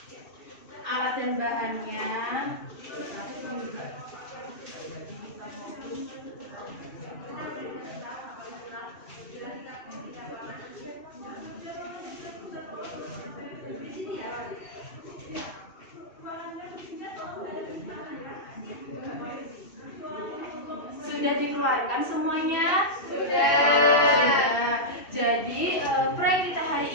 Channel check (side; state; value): right; late; 2.7 ms